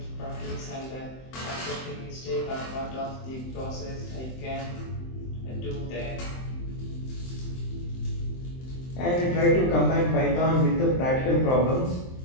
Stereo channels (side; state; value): right; late; 23 ms